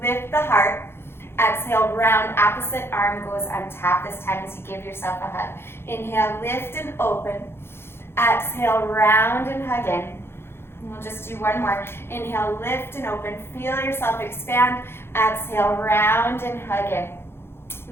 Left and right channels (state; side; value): late; right; 0.11 ms